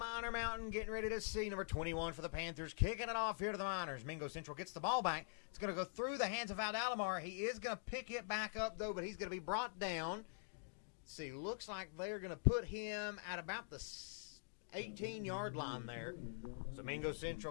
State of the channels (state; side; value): silent; right; digital silence